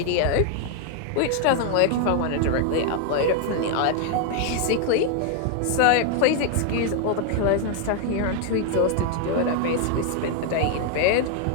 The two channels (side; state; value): both; different; correlation 0.00